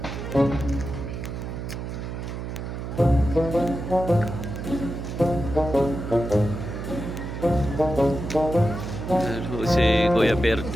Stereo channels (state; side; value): noise; right; hum, 6 dB below the sound